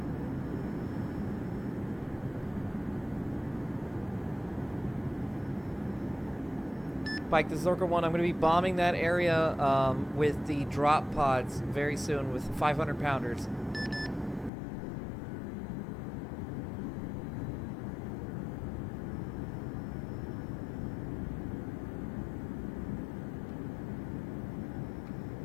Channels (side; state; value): right; drops out; at 14.5 s